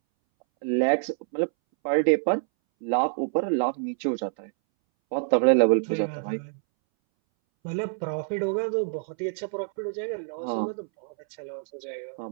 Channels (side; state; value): left; silent; 60 dB below the other